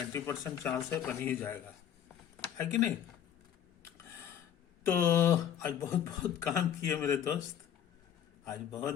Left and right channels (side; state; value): right; quieter; 9.7 dB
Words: चांस है बन ही जाएगा, है कि नहीं। तो आज बहुत बहुत काम किए मेरे दोस्त, आज बहुत